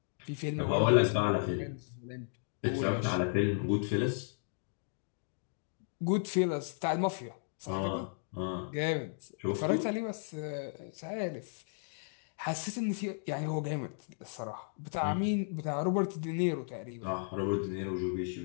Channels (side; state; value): right; silent; digital silence